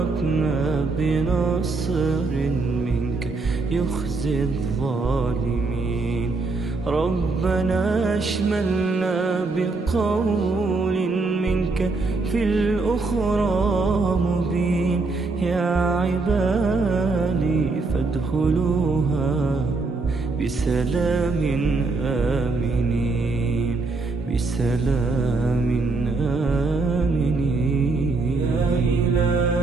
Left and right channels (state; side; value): quieter; left; 3.7 dB